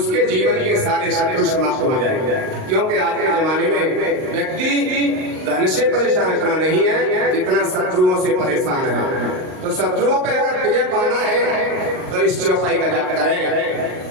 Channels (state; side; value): late; left; 38 ms